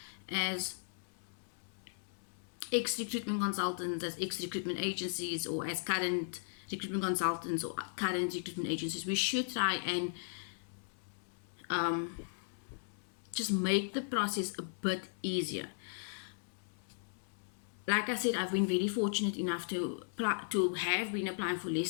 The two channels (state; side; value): silent; right; 53 dB below the other